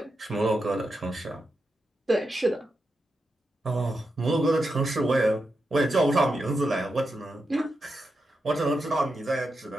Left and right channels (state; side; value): normal; both; correlation 0.87